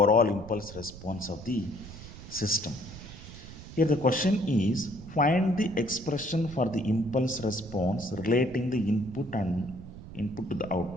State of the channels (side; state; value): right; noise; rumble, 14 dB below the sound